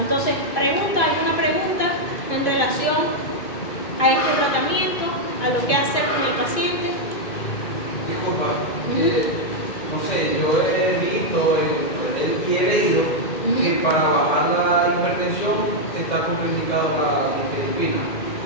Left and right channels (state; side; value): late; right; 2.5 ms